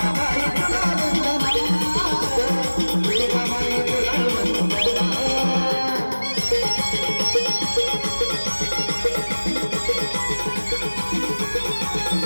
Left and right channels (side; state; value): both; inverted; correlation -1.00